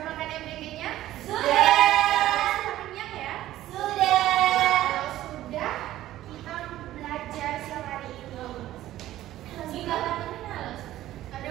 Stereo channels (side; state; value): left; quieter; 14.2 dB